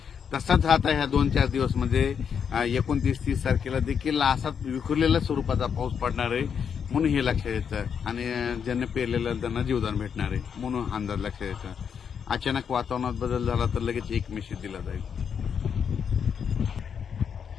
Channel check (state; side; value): quieter; right; 7.2 dB